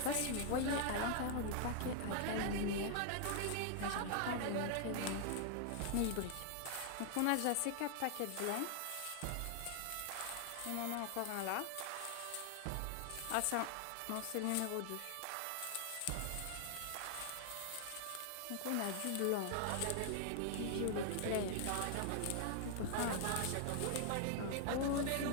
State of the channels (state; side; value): different; both; correlation 0.00